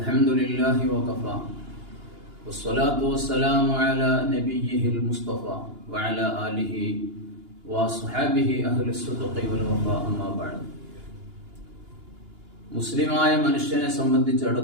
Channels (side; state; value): left; late; 2.9 ms